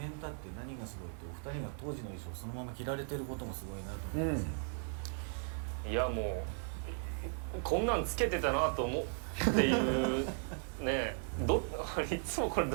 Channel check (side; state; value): left; silent; 53 dB below the other